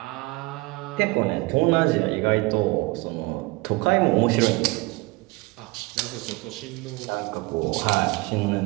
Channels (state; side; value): quieter; left; 23.9 dB